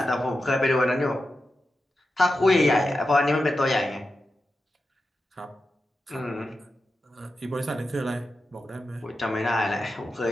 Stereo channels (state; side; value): normal; both; correlation 0.90